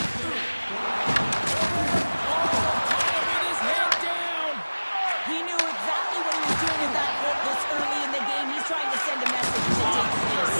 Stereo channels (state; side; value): inverted; both; correlation -1.00